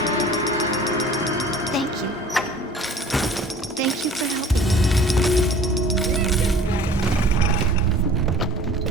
Thank you. Thank you for helping.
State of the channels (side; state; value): both; normal; correlation 0.46